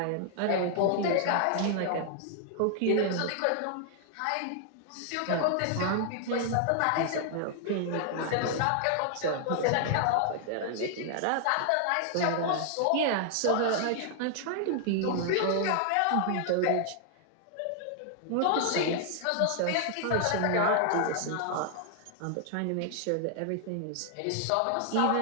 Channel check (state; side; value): different; both; correlation 0.00